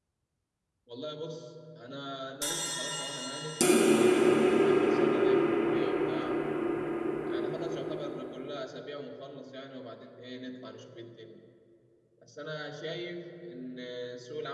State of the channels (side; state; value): both; identical; correlation 1.00